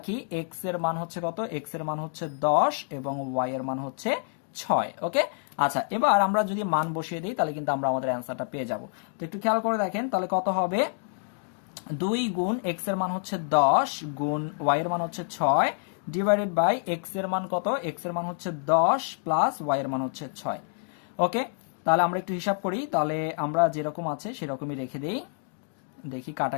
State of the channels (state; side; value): silent; right; 60 dB below the other